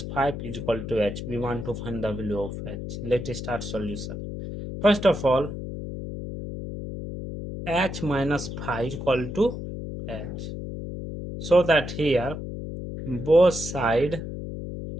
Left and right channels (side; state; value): left; noise; hum, 7 dB below the sound